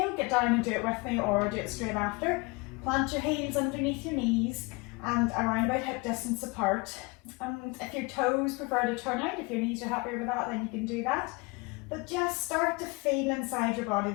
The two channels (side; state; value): right; quieter; 27.2 dB